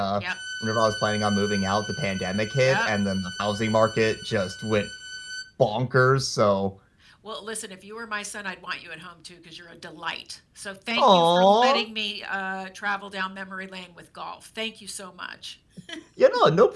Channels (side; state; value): both; identical; correlation 1.00